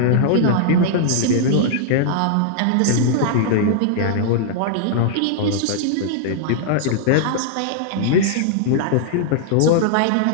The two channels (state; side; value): different; both; correlation -0.01